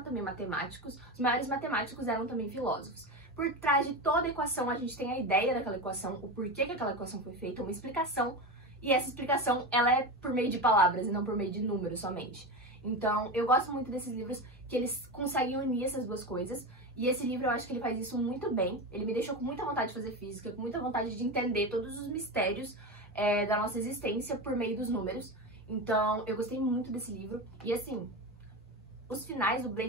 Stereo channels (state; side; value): normal; both; correlation 0.21